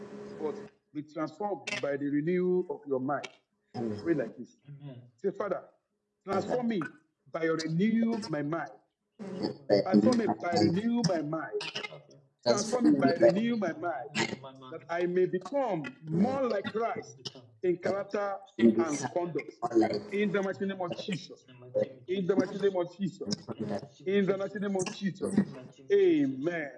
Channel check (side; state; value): both; identical; correlation 1.00